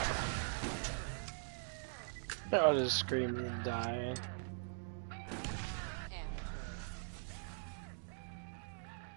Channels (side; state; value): left; silent; digital silence